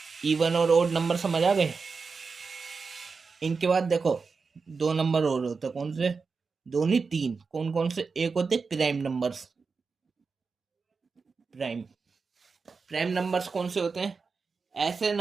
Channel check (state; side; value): quieter; left; 4.8 dB